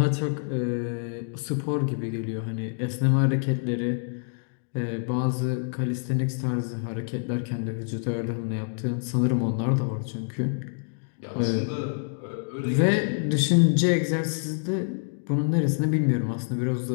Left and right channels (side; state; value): right; silent; digital silence